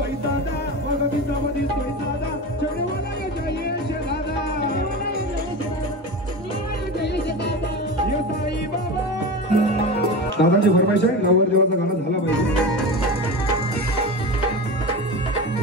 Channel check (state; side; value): normal; both; correlation 0.26